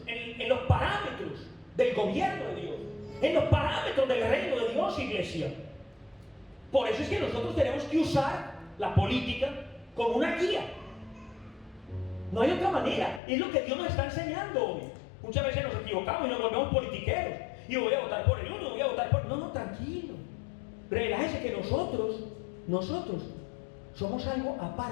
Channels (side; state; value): right; drops out; at 13.2 s